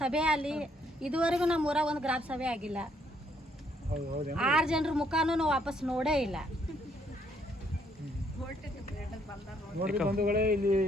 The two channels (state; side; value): normal; both; correlation 0.69